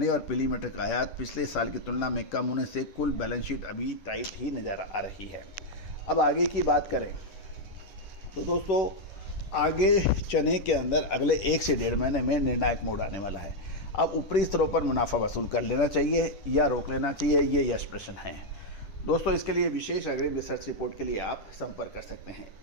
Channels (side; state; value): right; late; 10 ms